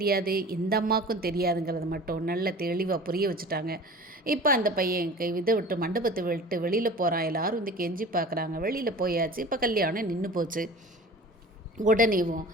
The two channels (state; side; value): normal; both; correlation 0.40